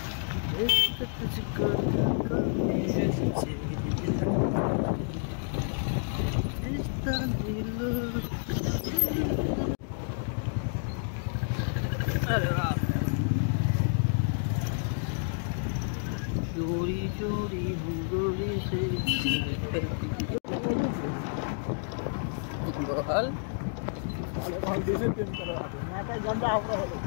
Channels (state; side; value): silent; right; digital silence